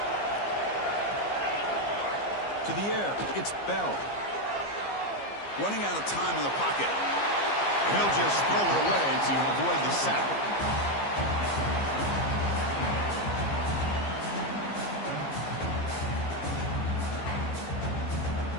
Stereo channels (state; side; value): late; right; 15 ms